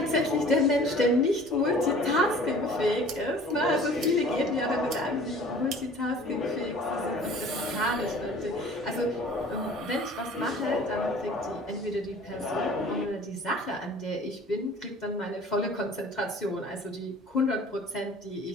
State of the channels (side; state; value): both; normal; correlation 0.48